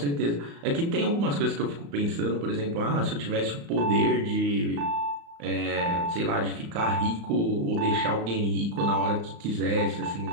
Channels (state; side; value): late; left; 35 ms